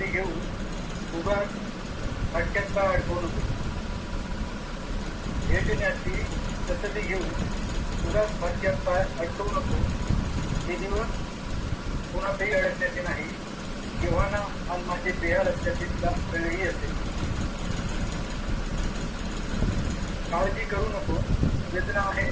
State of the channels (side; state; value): both; identical; correlation 1.00